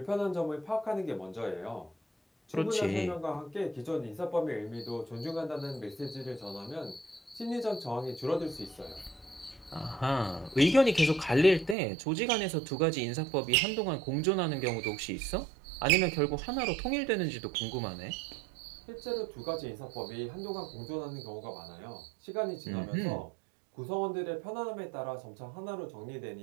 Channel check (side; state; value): left; drops out; at 11.8 s